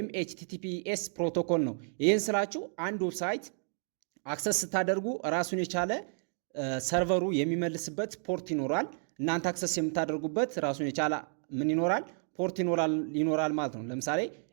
ኤችቲቲፒኤስ ፕሮቶኮል ነው። ይህን ስላችሁ አንድ ዌብሳይት አክሰስ ስታደርጉ ራሱን የቻለ ሰርቨሩ የሚመልስበት ፖርት ይኖራል። እናንተ አክሰስ የምታደርጉበት ራሱን የቻለ ምን ይኖራል? ፖርት ይኖራል ማለት ነው። ለምሳሌ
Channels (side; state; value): left; silent; 55 dB below the other